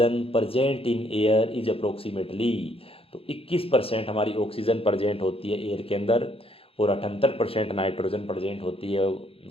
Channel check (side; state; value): right; late; 0.27 ms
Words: present in air is approximately. तो 21% हमारी ऑक्सीजन प्रजेंट होती है एयर के अंदर और 78% नाइट्रोजन प्रजेंट होती है